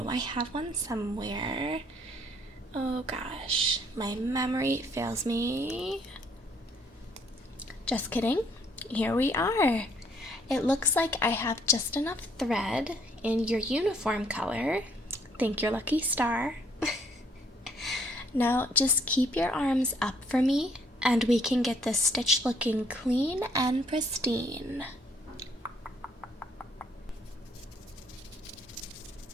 I have one somewhere. Oh gosh, my memory fails me. Just kidding. Here we are. It looks like I have just enough thread in your uniform color. Thank your lucky star. Now just keep your arms up for me and we can get this stitch looking clean and pristine.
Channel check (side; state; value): both; normal; correlation 0.65